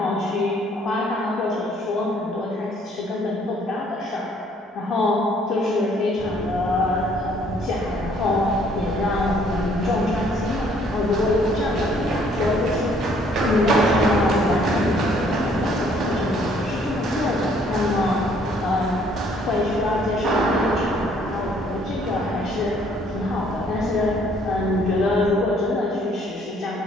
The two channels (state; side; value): normal; both; correlation 0.62